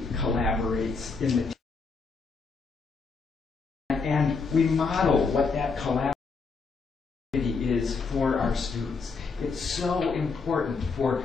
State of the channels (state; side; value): quieter; right; 4.6 dB